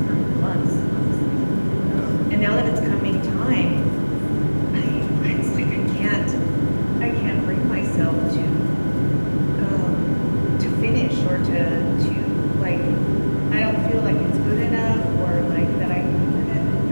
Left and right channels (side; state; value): both; inverted; correlation -1.00